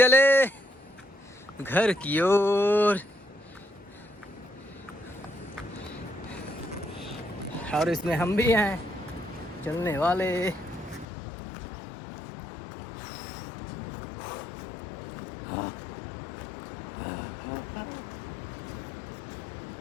घर की ओर और इसमें हम भी हैं चलने वाले।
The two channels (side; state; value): right; drops out; at 11.1 s